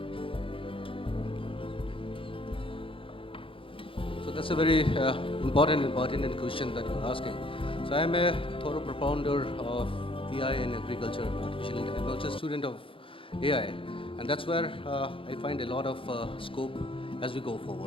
So that's a very important and pertinent question that you're asking. So I'm a thorough propounder of AI in agriculture and artificial intelligence. I'm also a student of AI, and that's where I find a lot of scope as we go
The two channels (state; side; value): late; right; 0.26 ms